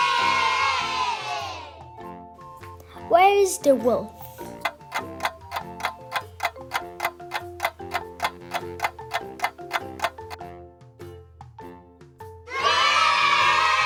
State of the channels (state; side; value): identical; both; correlation 1.00